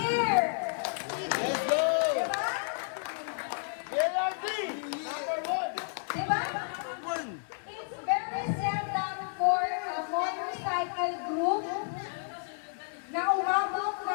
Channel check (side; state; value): right; silent; digital silence